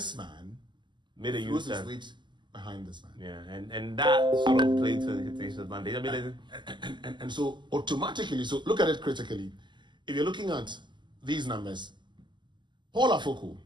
man, made a his weight behind this man. Yeah, and that sort of played to his advantage. I mean, and so automatically, so look at it critically. If you're looking at these numbers, Paul Afoko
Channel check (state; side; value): late; left; 0.22 ms